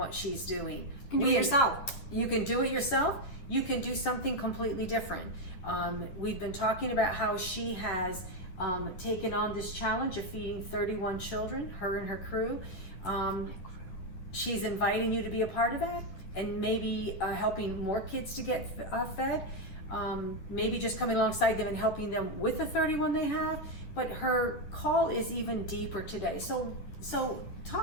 she's doing. You can do it yourself. You can do it yourself. You can do something completely different. We've been talking about how she has taken on this challenge of feeding 31 children, her and her crew. She's inviting you to be a part of that and maybe helping more kids to get fed. Maybe just coming alongside them and helping them with the 31 they have. But her call is even deeper today. So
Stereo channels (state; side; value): late; right; 11 ms